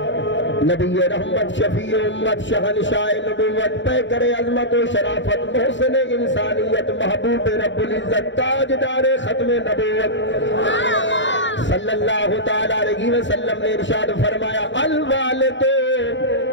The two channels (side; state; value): right; late; 0.54 ms